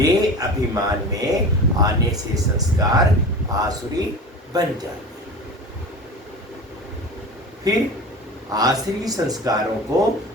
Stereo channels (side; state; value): both; normal; correlation 0.33